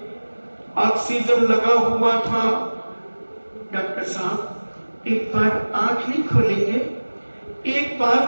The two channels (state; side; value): inverted; both; correlation -1.00